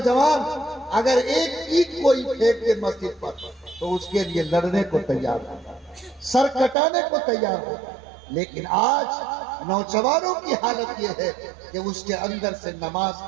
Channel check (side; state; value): left; drops out; at 6.8 s